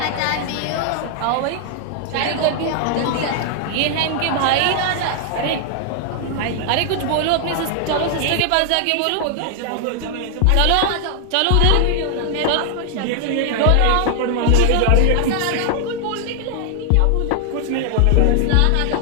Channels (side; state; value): both; different; correlation 0.00